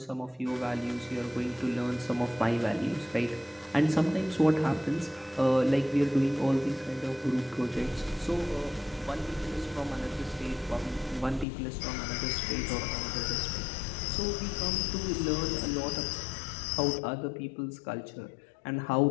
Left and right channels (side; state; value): right; drops out; at 11.5 s